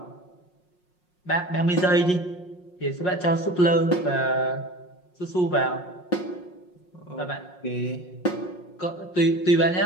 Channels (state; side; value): late; right; 5.5 ms